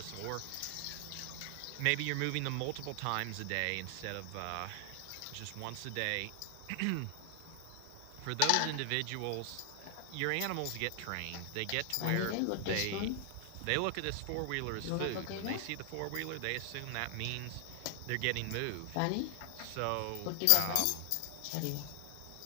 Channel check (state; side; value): different; both; correlation 0.00